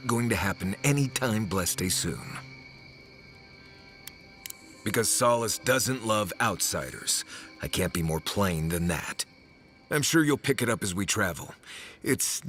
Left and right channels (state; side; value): identical; both; correlation 1.00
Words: going to happen anytime blessed soon. Because Solace doesn't love outsiders. I can't be more plain than that. I'm sure you'll pick it up as we travel. It's